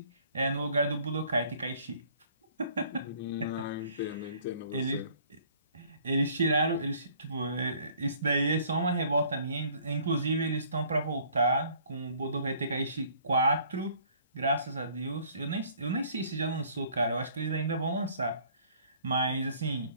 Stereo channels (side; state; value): both; inverted; correlation -0.57